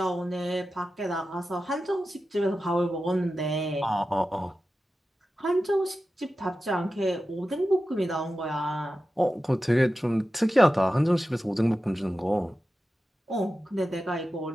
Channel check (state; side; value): normal; both; correlation 0.93